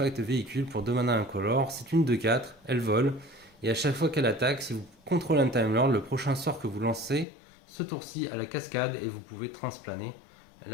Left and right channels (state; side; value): drops out; right; at 7.2 s